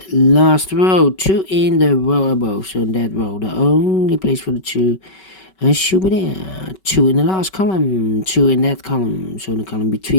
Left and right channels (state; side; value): late; right; 5.3 ms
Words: last row, 2 in the row above. So in that row, the only place for the 2 should be there. 2 in the last column, 2 in that column. So in the column